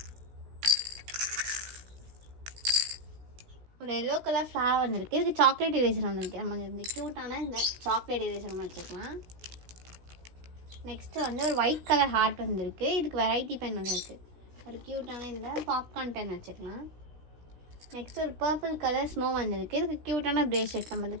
ஒரு எல்லோ கலர் ஃப்ளவர் வந்திருக்கு. இதுக்கு சாக்லேட் எரேசர் வந்திருக்கு. நம்ம இந்த க்யூட்டான இந்த சாக்லேட் எரேசர் ஒன்று வச்சுக்கலாம். நெக்ஸ்ட்டு வந்து ஒரு ஒயிட் கலர் ஹார்ட் வந்திருக்கு. இதுக்கு வெரைட்டி பென் வந்திருக்கு. ஒரு க்யூட்டான இந்த பாப்கார்ன் பென் வச்சுக்கலாம். நெக்ஸ்ட் ஒரு பர்பிள் கலர் ஸ்னோ வந்திருக்கு. இதுக்கு க்யூட்டான பிரேஸ்லெட், நம்ம இந்த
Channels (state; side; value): late; left; 17 ms